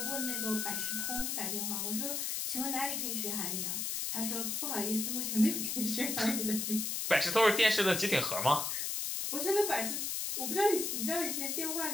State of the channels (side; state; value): left; noise; hiss, 1 dB below the sound